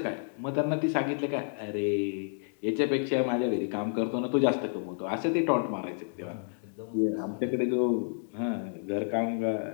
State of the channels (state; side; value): silent; right; digital silence